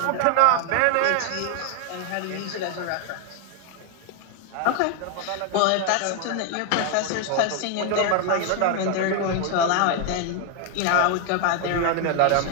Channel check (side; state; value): both; different; correlation 0.00